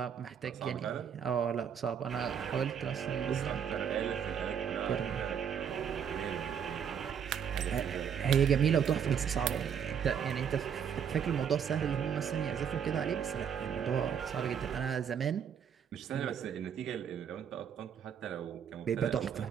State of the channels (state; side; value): quieter; left; 7.9 dB